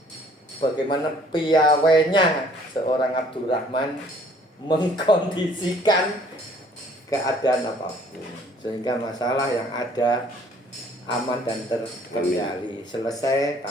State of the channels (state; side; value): normal; both; correlation 0.58